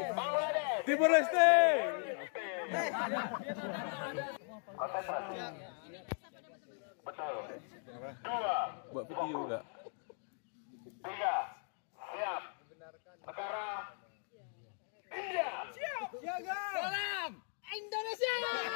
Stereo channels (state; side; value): silent; right; 52 dB below the other